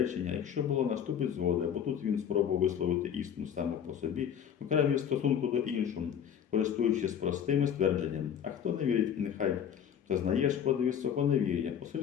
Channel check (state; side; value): quieter; right; 8.6 dB